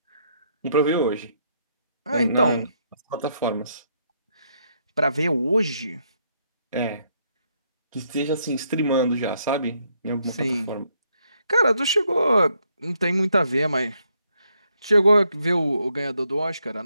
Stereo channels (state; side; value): inverted; both; correlation -0.74